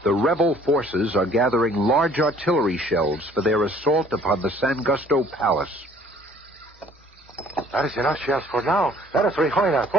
the rebel forces are gathering large artillery shells for their assault upon the San Gusto Palace. That is enough shells for now. Let us rejoin our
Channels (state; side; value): normal; both; correlation 0.56